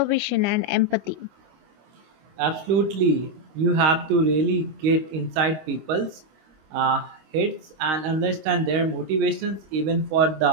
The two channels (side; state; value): left; late; 26 ms